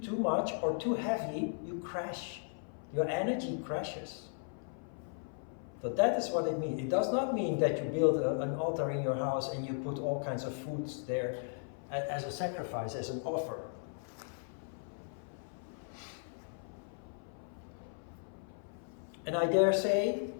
too much or too heavy, you crash. Your energy crashes. So that is what it means. It does not mean that you build an altar in your house and you put all kinds of foods there as a sacrifice, as an offer. And I dare say,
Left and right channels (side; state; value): right; silent; 54 dB below the other